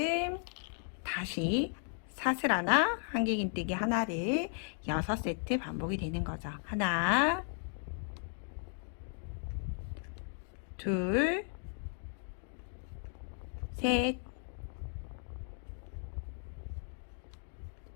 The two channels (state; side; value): silent; right; 54 dB below the other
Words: 다시 사슬 하나, 한길긴뜨기 하나를 6세트 반복이 되는 거죠. 하나, 둘, 셋,